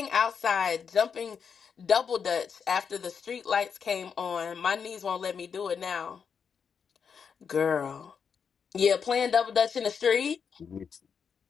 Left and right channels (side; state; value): right; quieter; 6.6 dB